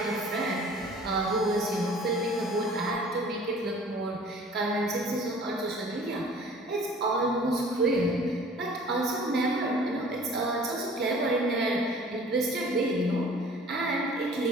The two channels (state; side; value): normal; both; correlation 0.49